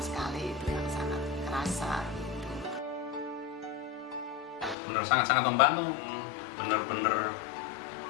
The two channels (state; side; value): drops out; right; at 4.8 s